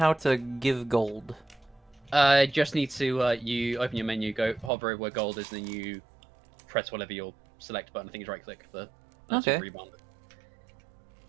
to give gold. Just need to you open your menu, go hover over where gold is, and then you press whatever your select button. I think it's right click for Okay. rebound.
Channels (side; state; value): left; drops out; at 4.7 s